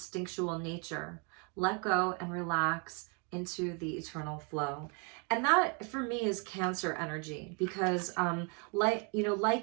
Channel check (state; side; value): quieter; left; 33.5 dB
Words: nature. Let go and relax into the eternal flow. And that for me is Cancer energy, because like